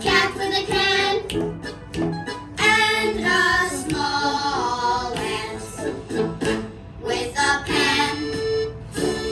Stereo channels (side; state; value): both; identical; correlation 1.00